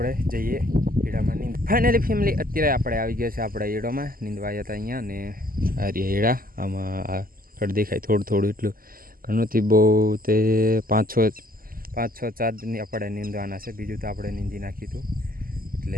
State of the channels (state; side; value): late; left; 0.42 ms